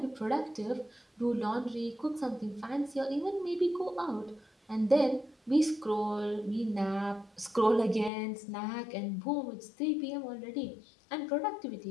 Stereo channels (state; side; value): drops out; right; at 8.1 s